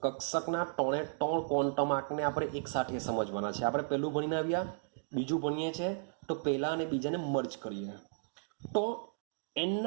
કક્ષકના 3 ક્વોન્ટમ આંકને આપણે એક સાથે સમજવાના છે. આપણે પહેલું ભણીને આવ્યા, બીજું ભણીએ છીએ, તો પહેલા અને બીજાને મર્જ કરીએ. તો n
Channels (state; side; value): silent; left; digital silence